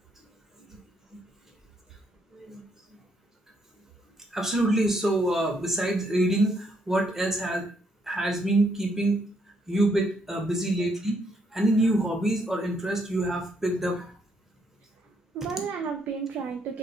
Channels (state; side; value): normal; both; correlation 0.73